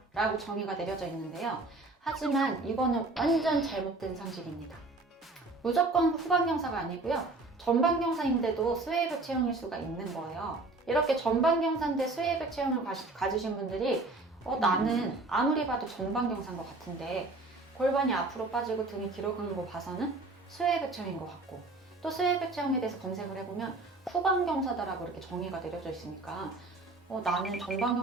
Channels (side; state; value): left; quieter; 3.2 dB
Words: 라고 정의가 내려져 있는데요. 하지만 이거는 완전 잘못된 상식입니다. 무조건 후방경사가 아니고요, 전방경사인데도 스웨이백 체형일 수가 있는 거예요. 이렇게 전방경사인데 스웨이백 체형을 가지신 분들이 나는 아무리 봐도 전방경사인 것 같은데 골반이 앞으로 빠지고 등이 뒤로 가는 거 봐서는 스웨이백 체형인 것 같고, 또 스웨이백 체형에 대해서 검색을 해보면 후방경사다라고 이렇게 정의가 내려져 있으니까 나는